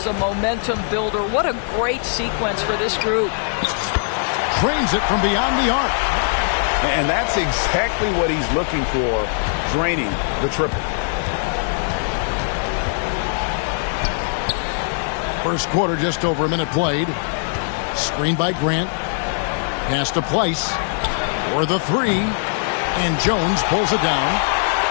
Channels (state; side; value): silent; right; digital silence